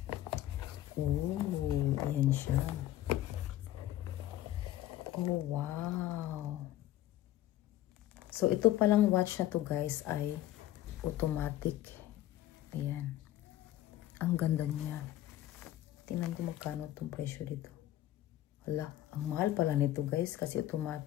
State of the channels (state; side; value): quieter; right; 13.7 dB